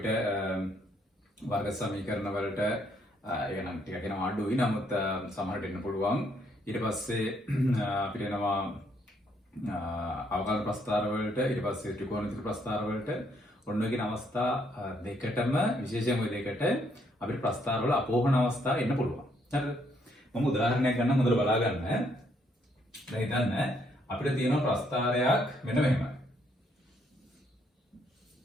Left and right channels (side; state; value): both; normal; correlation 0.71